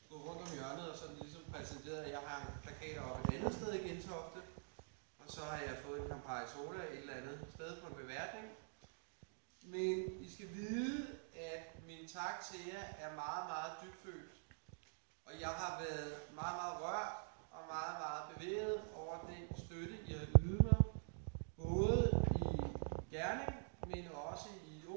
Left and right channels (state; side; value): silent; left; digital silence